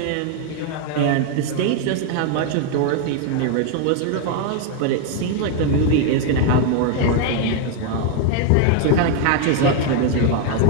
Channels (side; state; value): both; different; correlation 0.01